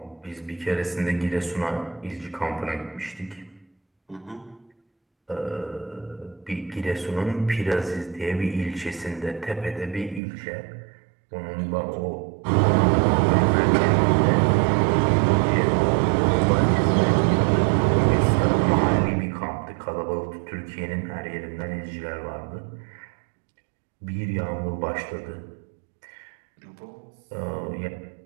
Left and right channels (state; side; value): drops out; left; at 10.2 s